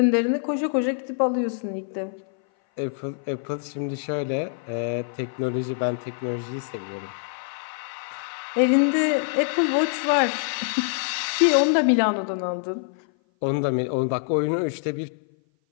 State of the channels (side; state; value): right; silent; 57 dB below the other